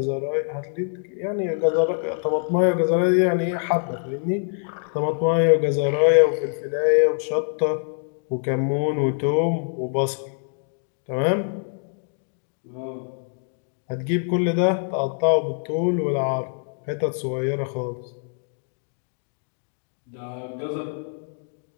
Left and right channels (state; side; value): silent; right; 62 dB below the other